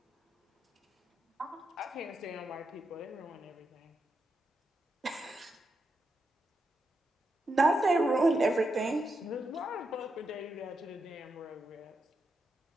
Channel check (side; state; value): both; normal; correlation 0.84